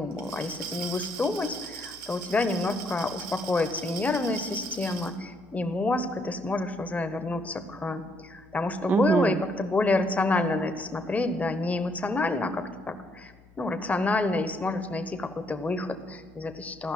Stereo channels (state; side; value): noise; left; hum, 26 dB below the sound